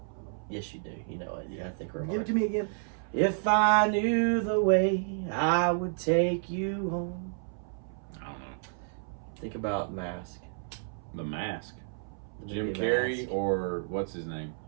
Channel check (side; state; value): left; silent; 57 dB below the other